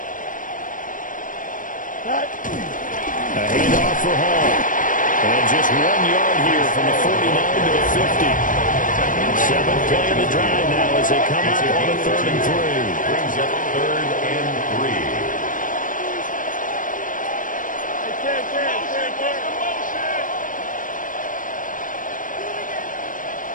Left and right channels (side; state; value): right; late; 0.38 ms